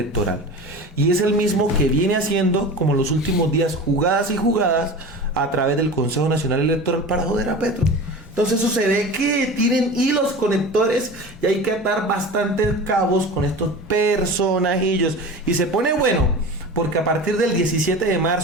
Y es el mismo que viene haciendo, como los últimos días, jugadas y jugadas a través del Consejo Nacional Electoral para joder a Petro. Entonces eso se ve que tienen hilos conectores y hay que atar bastantes cabos con estos personajillos. Y se pone bueno, porque a partir del 17 de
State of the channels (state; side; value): normal; both; correlation 0.33